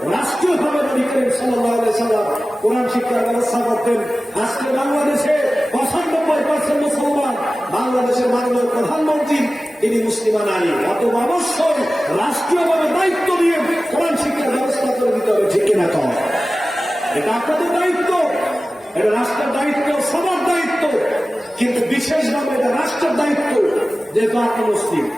রাষ্ট্রীয়ভাবে নবী করিম সাল্লাল্লাহু আলাইহি ওয়াসাল্লাম কোরআন শিক্ষার ব্যবস্থা করতেন। আজকে বাংলাদেশে 95% মুসলমান, বাংলাদেশের মাননীয় প্রধানমন্ত্রী তিনি মুসলিমা নারী। অতএব অবশ্যই রাষ্ট্রীয়ভাবে দায়িত্ব নিয়ে কোরআন শিক্ষার ব্যবস্থা করে দিতে হবে, ঠিক কিনা? কম এটা আপনাদের দায়িত্ব, এটা রাষ্ট্রের দায়িত্ব, সবার দায়িত্ব, কিন্তু বিশেষভাবে এটা রাষ্ট্রের দায়িত্ব। যেহেতু আপনি মুসলিম,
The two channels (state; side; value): normal; both; correlation 0.96